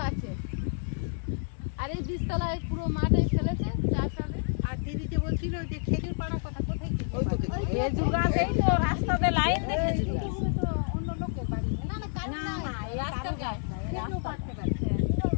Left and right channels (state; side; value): silent; right; 58 dB below the other